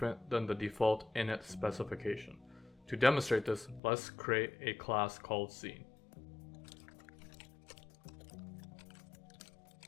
than the default init specification. To demonstrate this, let's create a class called scene.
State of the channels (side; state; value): right; drops out; at 3.8 s